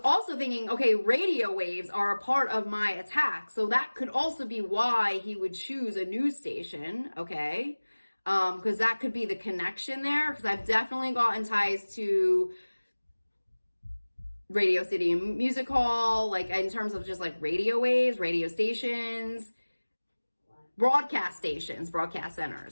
also thinking, okay, radio waves are a part of my attack, so that could also be why he would choose a news station, okay? Because that could be the connection there, because I've definitely gotten ties to Radio City Music Hall, like, in terms of just, like, radio waves, radio stations, broadcast stations, broadcast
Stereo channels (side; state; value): both; inverted; correlation -1.00